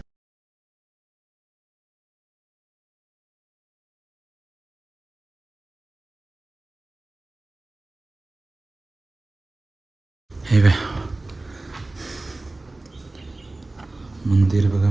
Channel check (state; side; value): quieter; left; 3.0 dB